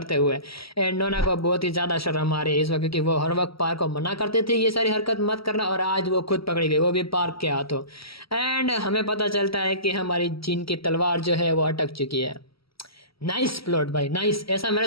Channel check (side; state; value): right; late; 0.75 ms